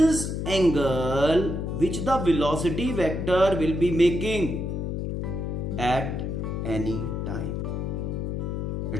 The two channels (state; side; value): noise; left; hum, 2 dB below the sound